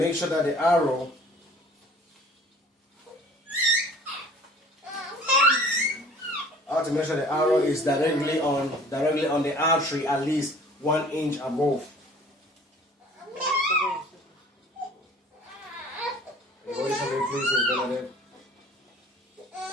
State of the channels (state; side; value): normal; both; correlation 0.49